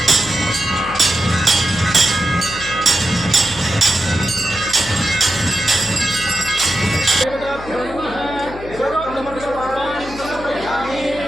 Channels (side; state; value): left; noise; hum, 14 dB below the sound